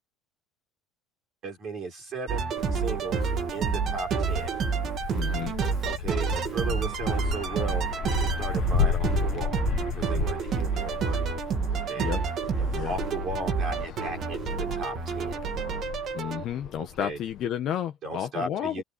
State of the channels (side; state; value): both; normal; correlation 0.46